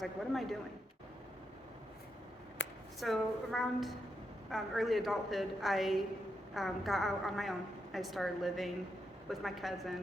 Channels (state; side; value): normal; both; correlation 0.83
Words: like, what am I doing? So around early adulthood, I got out on my own. I started living with my